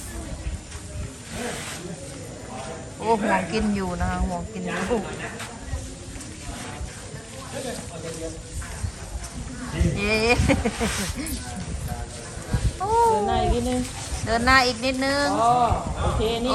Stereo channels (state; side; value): identical; both; correlation 1.00